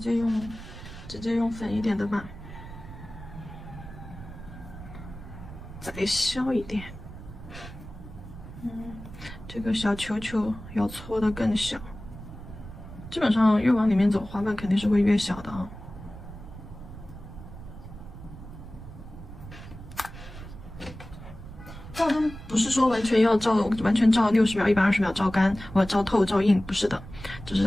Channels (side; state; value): right; noise; rumble, 14 dB below the sound